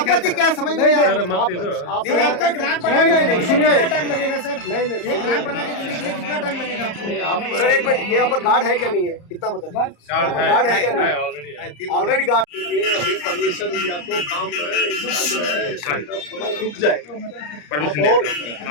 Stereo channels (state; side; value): late; right; 34 ms